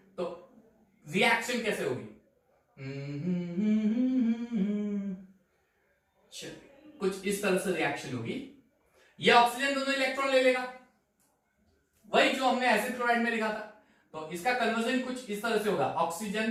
तो रिएक्शन कैसे होगी? कुछ इस तरह से रिएक्शन होगी, ये ऑक्सीजन दोनों इलेक्ट्रॉन ले लेगा, वही जो हमने एसिड क्लोराइड में लिखा था, तो इसका कन्वर्जन कुछ इस तरह से होगा,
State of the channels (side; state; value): both; identical; correlation 1.00